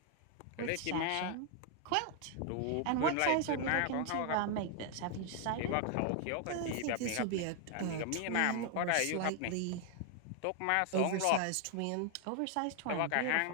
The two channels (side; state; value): both; different; correlation 0.00